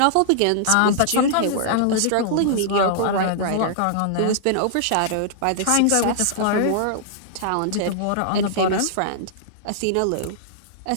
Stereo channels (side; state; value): both; different; correlation -0.01